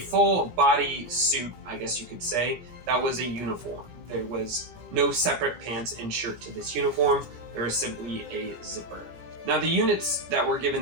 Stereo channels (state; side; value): late; left; 18 ms